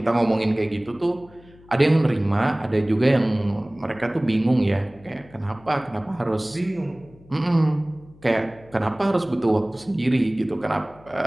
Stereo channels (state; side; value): noise; left; hum, 25 dB below the sound